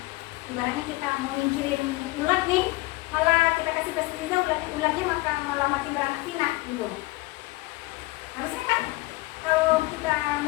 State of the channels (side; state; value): right; quieter; 21.2 dB